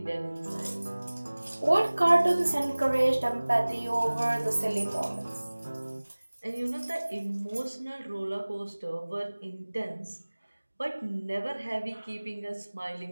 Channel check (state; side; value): inverted; both; correlation -1.00